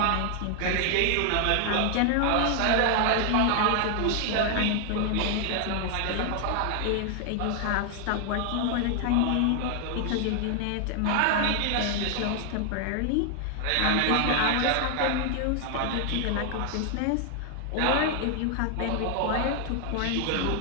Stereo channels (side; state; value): both; different; correlation 0.00